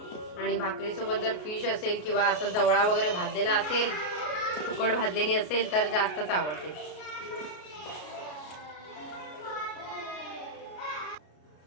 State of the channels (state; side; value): late; right; 33 ms